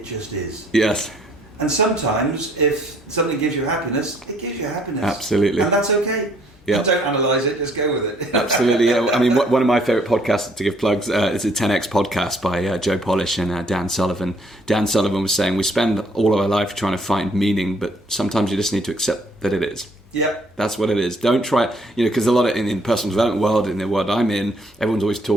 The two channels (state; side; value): normal; both; correlation 0.64